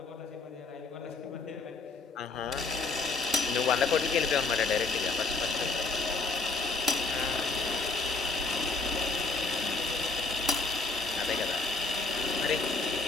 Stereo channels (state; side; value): quieter; right; 3.9 dB